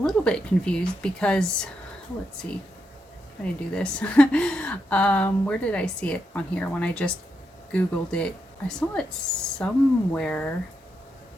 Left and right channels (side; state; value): both; normal; correlation 0.83